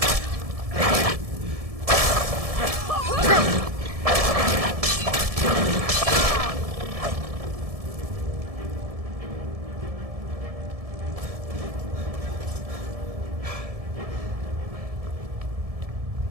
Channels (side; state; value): left; late; 1.7 ms